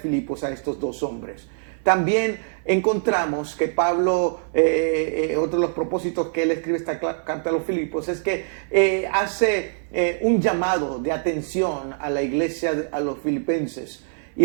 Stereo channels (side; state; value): left; silent; 59 dB below the other